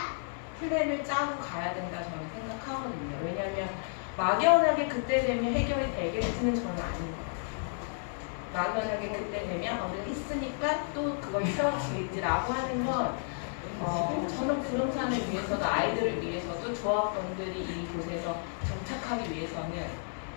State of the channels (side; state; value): right; silent; 57 dB below the other